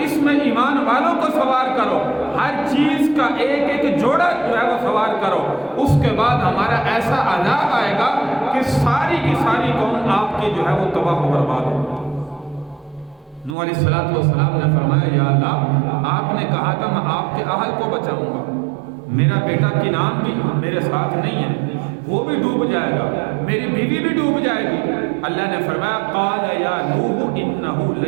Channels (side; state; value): left; drops out; at 13.6 s